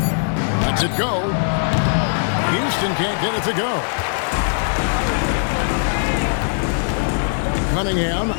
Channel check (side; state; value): right; silent; digital silence